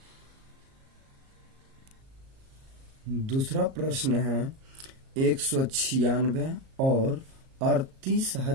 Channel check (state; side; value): late; left; 37 ms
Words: दूसरा प्रश्न है 196 और